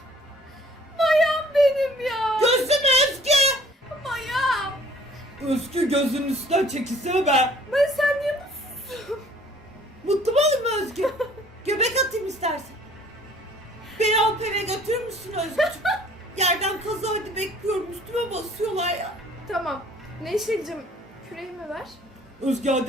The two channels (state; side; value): normal; both; correlation 0.56